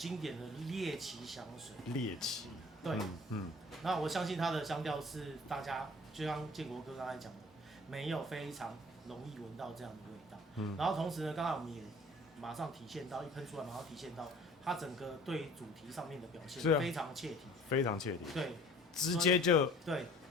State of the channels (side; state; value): both; normal; correlation 0.50